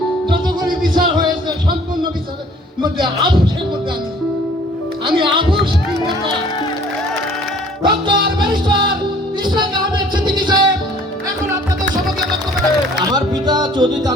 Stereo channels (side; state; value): both; normal; correlation 0.54